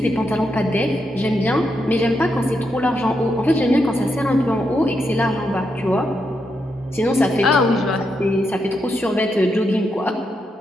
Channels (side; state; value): both; normal; correlation 0.82